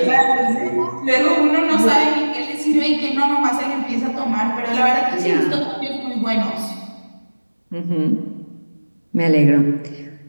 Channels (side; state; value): both; inverted; correlation -1.00